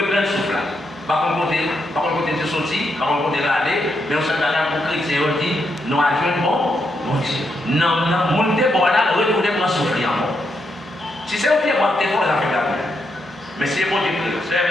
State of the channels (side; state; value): both; normal; correlation 0.81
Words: souffle là. Par contre, de sortir, par contre, de aller, mais on s'est allé pour chrétien, on dit, nous avons bon, mon Dieu. Non, mon Dieu, bon là, retourner pour souffler encore. Si c'est au pied, moi, t'es pour les affaires d'ailleurs. Mais c'est bon Dieu, c'est